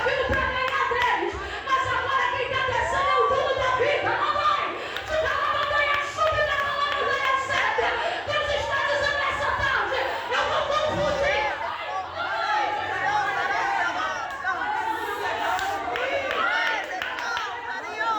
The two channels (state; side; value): identical; both; correlation 1.00